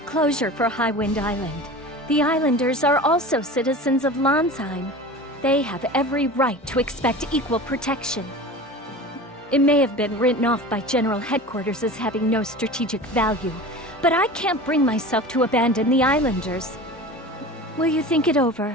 closure for Highwind Island. The islanders are also citizens of Landsheim. They have every right to expect equal protection. It may have been written off by General Headquarters as having no strategic value, but I can't bring myself to abandon the islanders. Will you think it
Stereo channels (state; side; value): normal; both; correlation 0.35